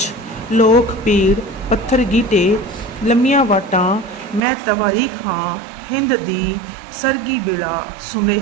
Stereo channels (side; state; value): left; drops out; at 4.4 s